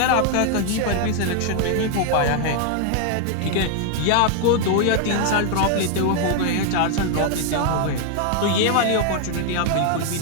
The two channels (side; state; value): both; different; correlation 0.00